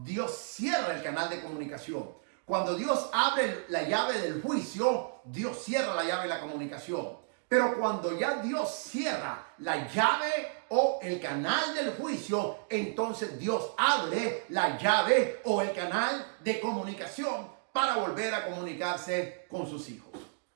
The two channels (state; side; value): silent; left; digital silence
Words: cierra el canal de comunicación. Cuando Dios abre la llave del juicio, Dios cierra la llave de la comunicación. Pero cuando ya Dios cierra la llave o el canal del juicio, entonces Dios abre la llave o el canal de comunicación para volver a comunicarse con sus hijos